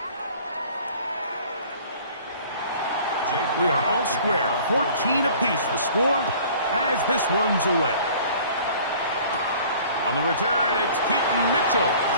We are all square, 14 apiece the score as this one's away. On the return, it's Keaton Mitchell.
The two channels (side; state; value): both; inverted; correlation -0.50